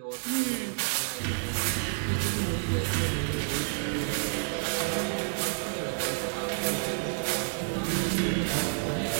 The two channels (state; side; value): silent; left; digital silence